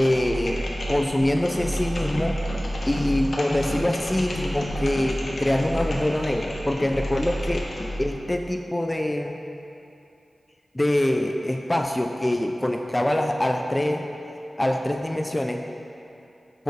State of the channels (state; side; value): normal; both; correlation 0.98